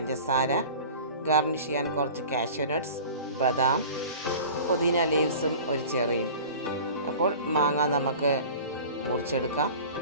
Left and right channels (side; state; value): both; inverted; correlation -0.40